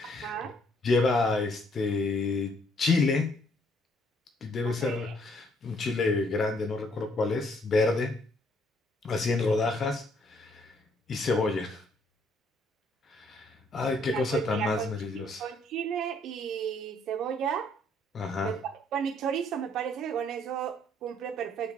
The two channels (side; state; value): both; normal; correlation 0.66